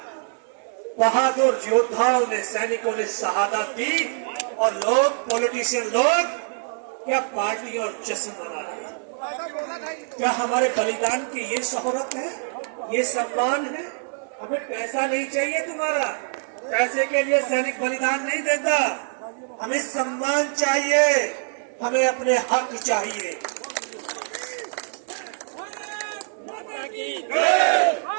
बहादुर योद्धाओं ने, सैनिकों ने शहादत दी, और लोग, पॉलिटिशियन लोग क्या पार्टी और जश्न मना रहे हैं। क्या हमारे बलिदान की ये शोहरत है, ये सम्मान है? हमें पैसा नहीं चाहिए तुम्हारा, पैसे के लिए सैनिक बलिदान नहीं देता। हमें सम्मान चाहिए, हमें अपने हक चाहिए।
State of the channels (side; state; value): left; silent; 62 dB below the other